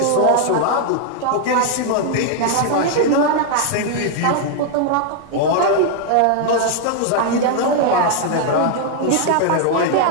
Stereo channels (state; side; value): different; both; correlation 0.00